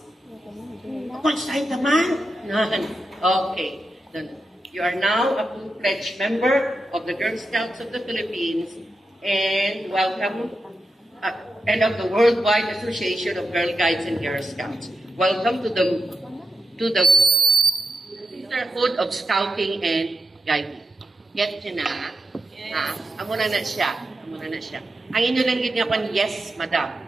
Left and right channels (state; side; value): normal; both; correlation 0.87